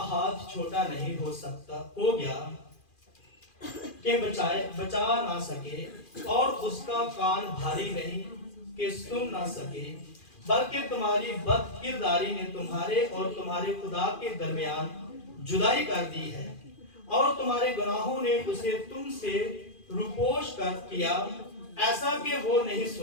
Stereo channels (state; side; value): late; right; 2.4 ms